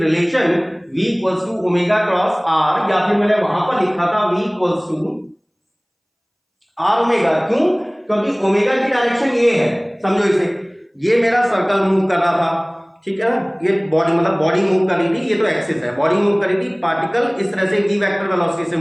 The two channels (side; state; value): both; identical; correlation 1.00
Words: relation v equals to omega cross R, या फिर मैंने वहां पर लिखा था v equals to are omega. क्यों? क्योंकि ओमेगा की डायरेक्शन ये है, समझो इसे, ये मेरा सर्कल मूव कर रहा था, ठीक है ना, ये बॉडी मतलब बॉडी मूव कर रही थी, ये तो एक्सिस है, बॉडी मूव कर रही थी, पार्टिकल इस तरह से v वेक्टर वेलोसिटी से